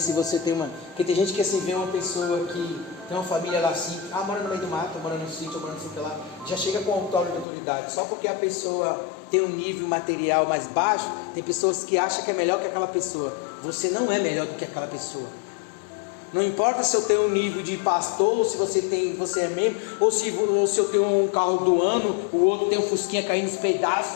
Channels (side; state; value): right; drops out; at 7.5 s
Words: você tem uma... Porque tem gente que assim vê uma pessoa que tem uma família lá assim, mora no meio do mato, mora no sítio, mora no sítio lá, já chega com autor de autoridade. Só porque a pessoa tem um nível material mais baixo, tem pessoas que acham que é melhor que aquela pessoa. Você não é melhor do que aquela pessoa. Não importa se eu tenho um nível de pastor, ou se você é membro, ou se eu tenho um carro do ano, o outro tem um fusquinha caindo nos